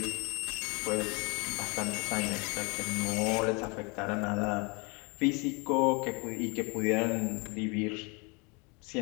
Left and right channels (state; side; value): quieter; right; 30.4 dB